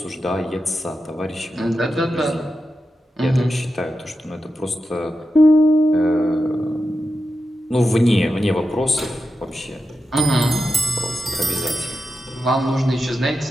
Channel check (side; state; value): both; normal; correlation 0.89